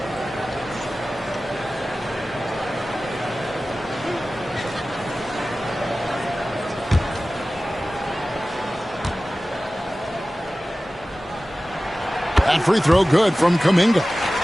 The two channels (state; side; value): normal; both; correlation 0.96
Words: That free throw good from Kuminga.